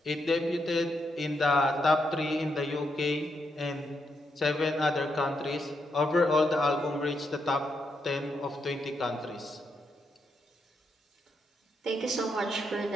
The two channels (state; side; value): normal; both; correlation 0.81